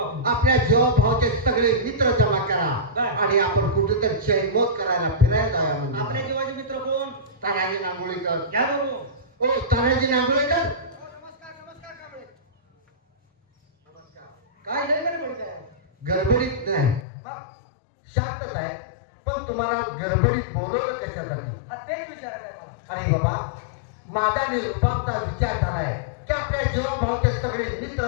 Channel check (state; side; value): drops out; right; at 17.1 s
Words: आपल्या जीवाभावाचे सगळे मित्र जमा करा बर. आणि आपण कुठेतरी चैनमोज करायला फिरायला जाऊया आपल्या म्हणजे जीवाचे मित्र कोण तानाजी नांगोळीकर. घ्या बघू ओ तानाजी नांगोळीकर नमस्कार नमस्कार कांबळे नमस्कार काय लय गडबड काय गडबडीत नाही मग शांतच आहे पण तुम्हाला गडबडीत बोलवलं कशासाठी? हा तेच विचारायचं आहे मला अरे बाबा माझा निरुपाचा विचार झालाय की आपल्या जीवाभावाचे सगळे